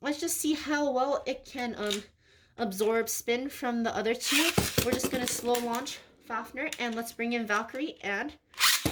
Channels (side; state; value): both; identical; correlation 1.00